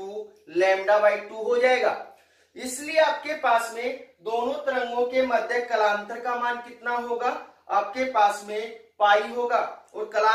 2 हो जाएगा। इसलिए आपके पास में दोनों तरंगों के मध्य कलांतर का मान कितना होगा, आपके पास में पाई होगा, और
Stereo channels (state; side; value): identical; both; correlation 1.00